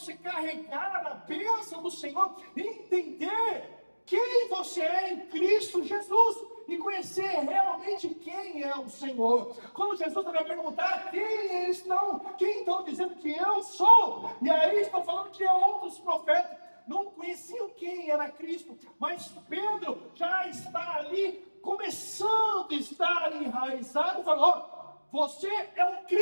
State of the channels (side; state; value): both; inverted; correlation -1.00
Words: carregar a bênção do Senhor, entender quem você é em Cristo Jesus. E conhecer realmente quem é o Senhor. Quando Jesus vai perguntar quem estão dizendo que eu sou, e aí estão falando que outros profetas não conheciam quem era Cristo, mas Pedro já está ali começando a estar enraizado, falou: você é o